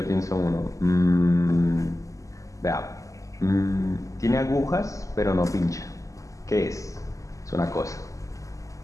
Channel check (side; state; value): right; late; 0.16 ms